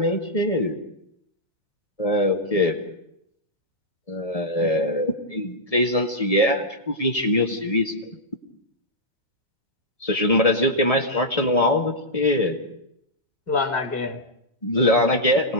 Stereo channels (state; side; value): late; right; 1.7 ms